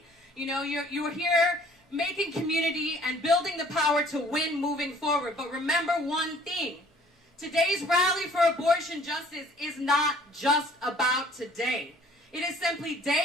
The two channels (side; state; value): both; normal; correlation 0.56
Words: You know, you're here making community and building the power to win moving forward. But remember one thing. Today's rally for abortion justice is not just about today. It is simply